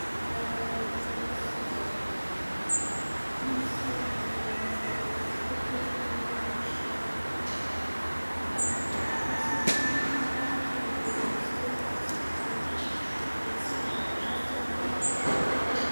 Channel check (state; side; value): inverted; both; correlation -1.00